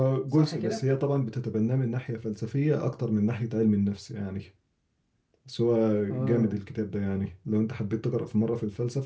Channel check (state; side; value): identical; both; correlation 1.00